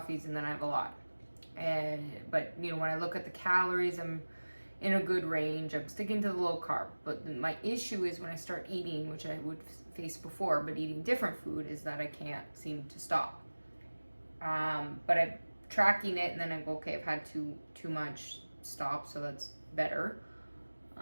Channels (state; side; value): inverted; both; correlation -1.00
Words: and then I have a lot. But you know, when I look at the calories, I'm in a good range. I'm sticking to the low carb. But my issue is when I start eating, which I would face before, but eating different food, is that I can't seem to stop. But I'm tracking it and then I go, okay, I've had too much, stop, so that's better.